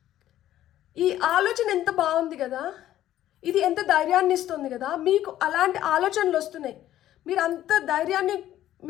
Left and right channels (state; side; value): quieter; right; 12.8 dB